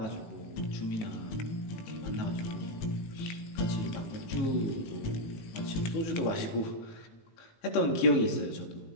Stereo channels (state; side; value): late; right; 18 ms